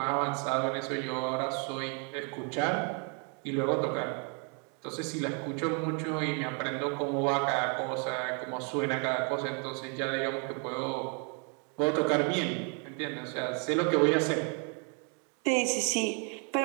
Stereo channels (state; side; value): quieter; left; 38.3 dB